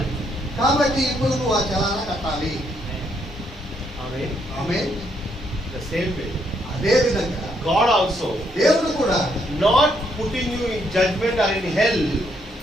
కాబట్టి ఇప్పుడు నువ్వు ఆ చలానా కట్టాలి. Amen. Amen. The same way. అదే విధంగా God also దేవుడు కూడా not putting you in judgment or in hell.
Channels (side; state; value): both; normal; correlation 0.73